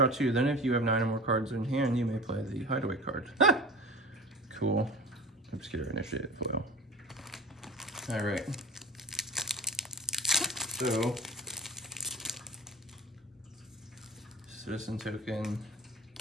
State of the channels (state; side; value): normal; both; correlation 0.37